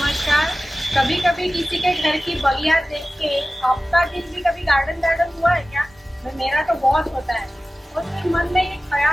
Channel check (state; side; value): normal; both; correlation 0.96